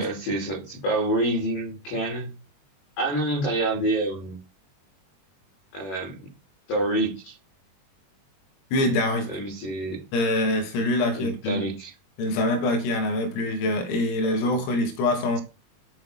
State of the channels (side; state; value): right; late; 21 ms